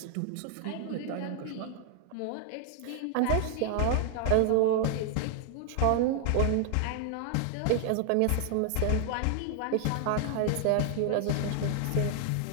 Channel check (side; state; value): both; different; correlation 0.00